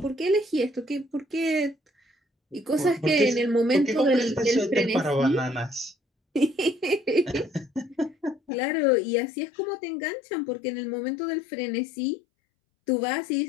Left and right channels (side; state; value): right; drops out; at 8.4 s